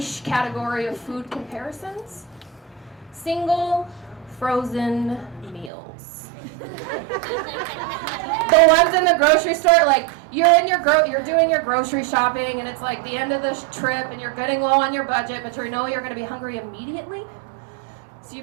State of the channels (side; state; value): left; drops out; at 5.7 s